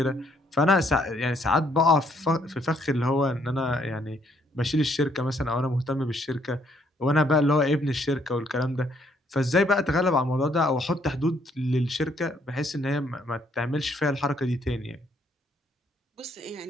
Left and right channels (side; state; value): both; normal; correlation 0.68